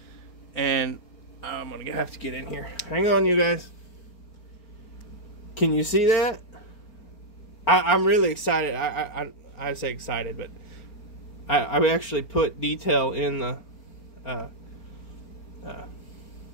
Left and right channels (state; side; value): late; right; 4.4 ms